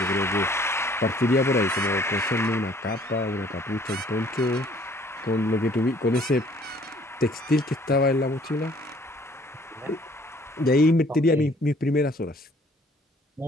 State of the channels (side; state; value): both; normal; correlation 0.58